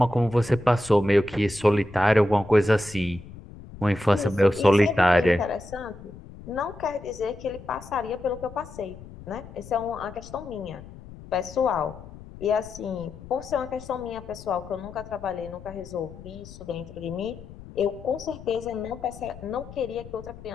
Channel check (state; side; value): noise; left; rumble, 16 dB below the sound